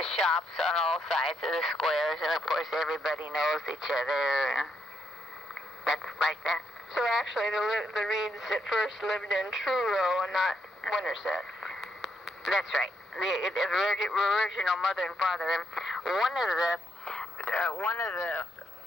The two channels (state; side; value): normal; both; correlation 0.77